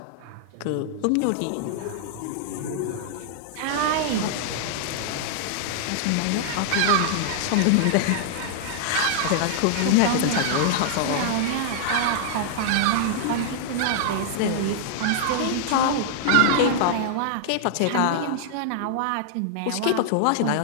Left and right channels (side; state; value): both; different; correlation -0.01